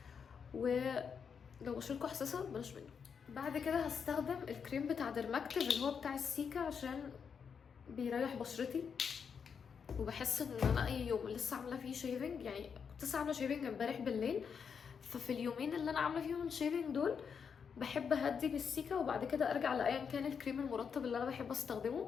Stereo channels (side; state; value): right; quieter; 6.6 dB